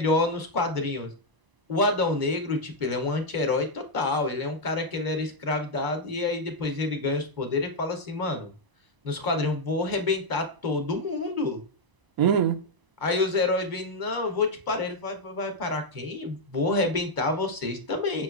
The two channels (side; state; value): left; late; 1.0 ms